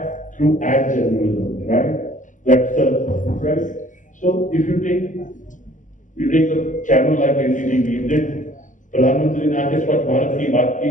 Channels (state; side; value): late; right; 0.37 ms